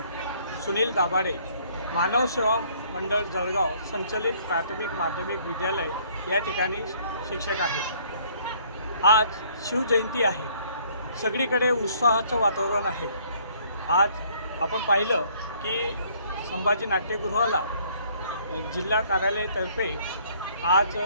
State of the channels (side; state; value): both; inverted; correlation -0.61